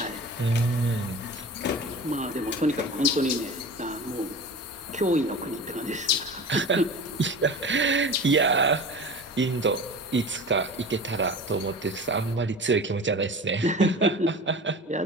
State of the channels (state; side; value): normal; both; correlation 0.35